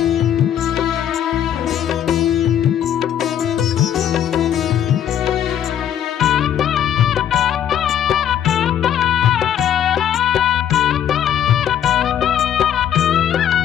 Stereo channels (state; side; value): quieter; right; 10.0 dB